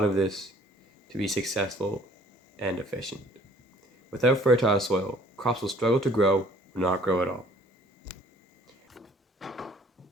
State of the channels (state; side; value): normal; both; correlation 0.56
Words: of this to be successful and efficient. Without fertile soil, crops will struggle to grow or not grow at all.